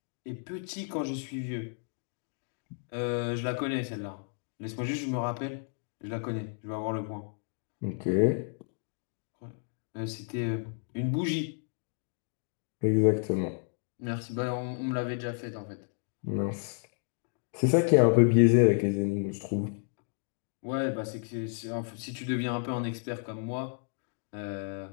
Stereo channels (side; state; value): right; silent; 57 dB below the other